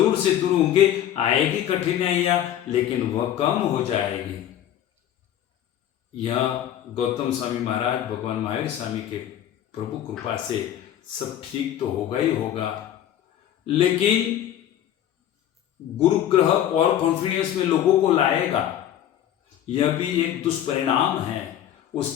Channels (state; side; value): quieter; right; 11.0 dB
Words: से दूर होंगे। आएगी कठिनाइयां, लेकिन वह कम हो जाएगी। यह गौतम स्वामी महाराज, भगवान महावीर स्वामी के प्रभु कृपा से सब ठीक तो होगा ही होगा। लेकिन गुरु ग्रह और कॉन्फिडेंस में लोगों को लाएगा, यह भी एक दुष्परिणाम है।